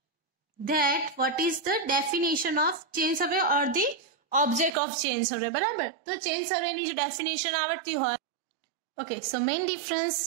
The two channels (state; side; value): drops out; left; at 4.7 s